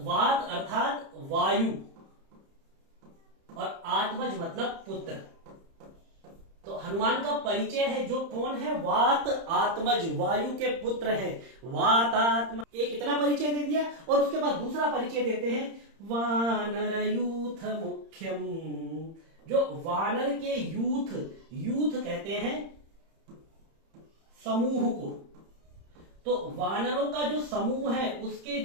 वात अर्थात वायु, और आत्मज मतलब पुत्र। तो हनुमान का परिचय है जो कौन है? वात आत्मज, वायु के पुत्र है। वात आत्म, एक इतना परिचय दे दिया और उसके बाद दूसरा परिचय देते हैं, वानर यूथ मुख्यम, जो वानर के यूथ, यूथ कहते हैं समूह को, तो वानरों का जो समूह है उसके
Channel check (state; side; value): late; left; 30 ms